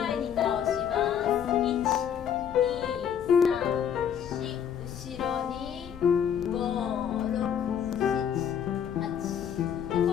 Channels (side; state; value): right; quieter; 8.5 dB